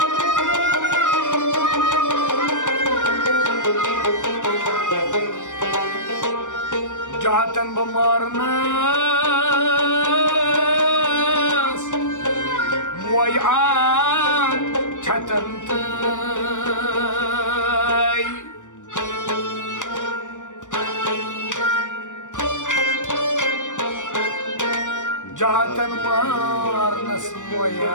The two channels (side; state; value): right; late; 0.86 ms